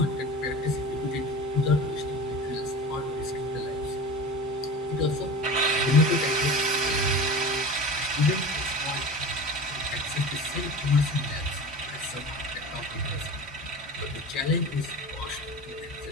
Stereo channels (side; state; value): both; normal; correlation 0.34